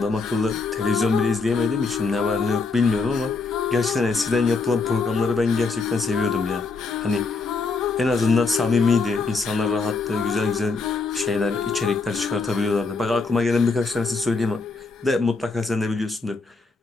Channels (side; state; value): right; quieter; 4.1 dB